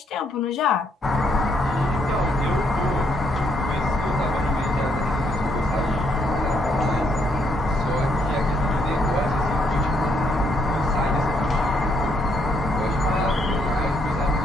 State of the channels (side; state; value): both; normal; correlation 0.72